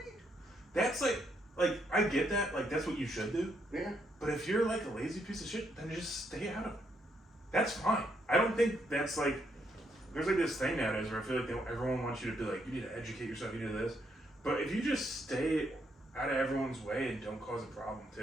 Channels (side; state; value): both; normal; correlation 0.75